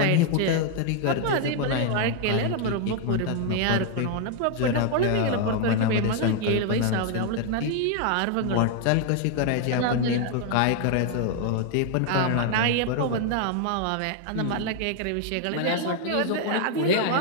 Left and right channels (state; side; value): different; both; correlation 0.00